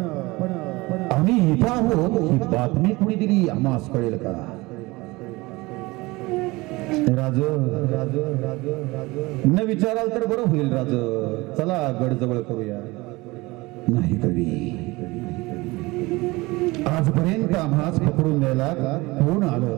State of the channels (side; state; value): left; quieter; 22.3 dB